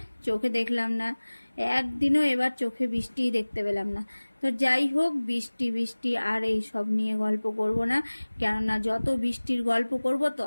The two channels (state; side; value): inverted; both; correlation -1.00